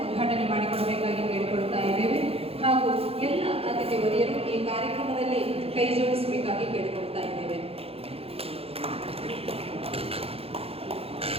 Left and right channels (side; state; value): left; late; 0.28 ms